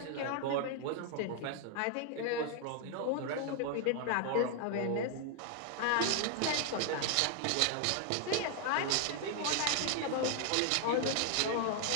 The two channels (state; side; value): different; both; correlation 0.00